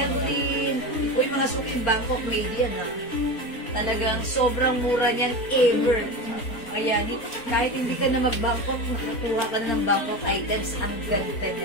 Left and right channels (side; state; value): right; late; 4.2 ms